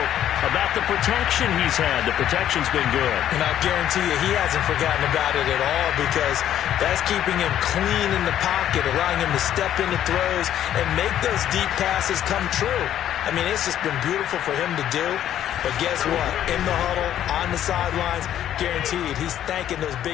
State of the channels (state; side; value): quieter; right; 11.1 dB